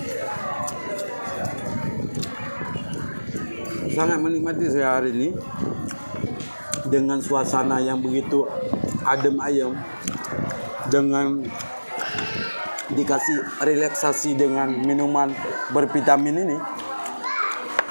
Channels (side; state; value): both; inverted; correlation -1.00